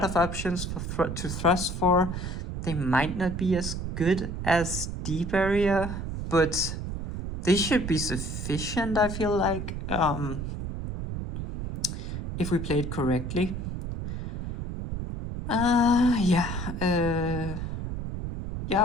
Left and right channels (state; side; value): noise; right; rumble, 5 dB below the sound